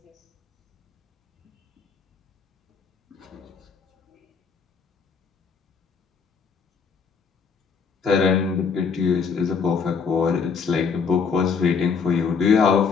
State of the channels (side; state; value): right; quieter; 5.7 dB